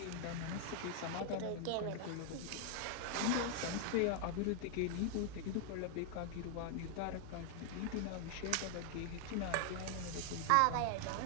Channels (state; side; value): different; both; correlation 0.00